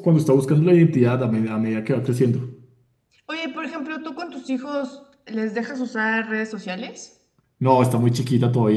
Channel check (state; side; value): identical; both; correlation 1.00